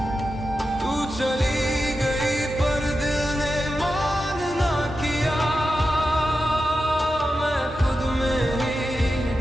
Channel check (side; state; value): both; normal; correlation 0.90